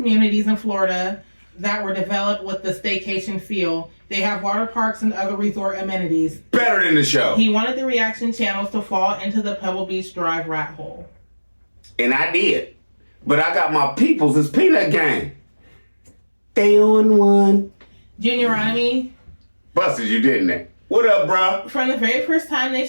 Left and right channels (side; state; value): both; inverted; correlation -1.00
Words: in Florida that were developed with the staycation feel. They have water parks and other resort amenities. Better than the show. He wanted the reaction channels to fall into the Pebble Beach Drive rat hole. And I did. But I got my peoples. It's Peanut Gang. They on one. Junioronomy. Busted you, didn't they? What up, bro? From the very first time they